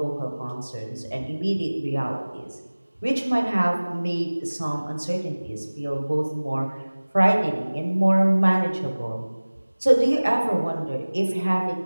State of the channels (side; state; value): both; inverted; correlation -1.00